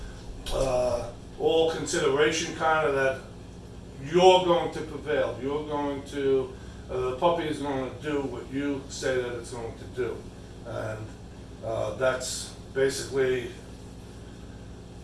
all consideration kind of that you're going to prevail. You're going to the puppy is going to do what you say that it's going to do, and that's basically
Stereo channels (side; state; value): both; identical; correlation 1.00